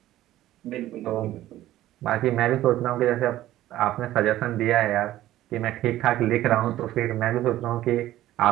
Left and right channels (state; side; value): quieter; left; 14.4 dB